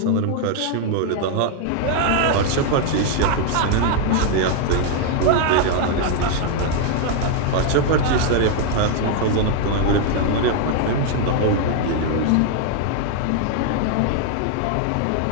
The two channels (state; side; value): different; both; correlation 0.01